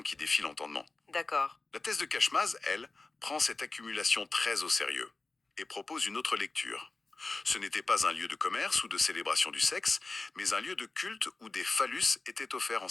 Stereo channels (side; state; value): right; quieter; 3.5 dB